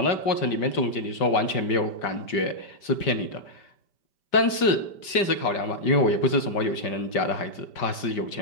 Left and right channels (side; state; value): right; late; 5.1 ms